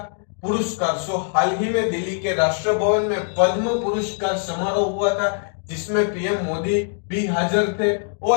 पुरस्कार। सो हाल ही में दिल्ली के राष्ट्र भवन में पद्म पुरस्कार समारोह हुआ था, जिसमें पीएम मोदी भी हाजिर थे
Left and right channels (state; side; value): silent; right; digital silence